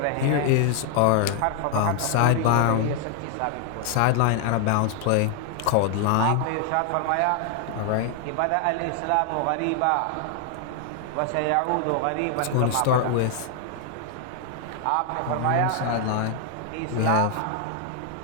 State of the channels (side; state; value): both; different; correlation 0.00